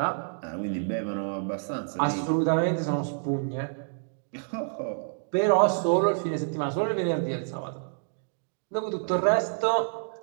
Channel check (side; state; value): left; silent; digital silence